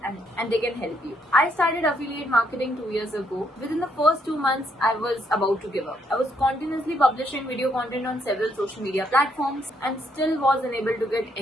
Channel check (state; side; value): normal; both; correlation 0.73